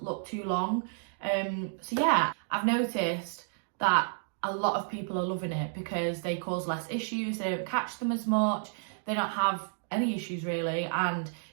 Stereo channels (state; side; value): silent; left; digital silence